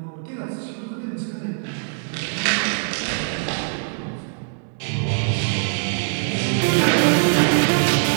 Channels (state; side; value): silent; left; 64 dB below the other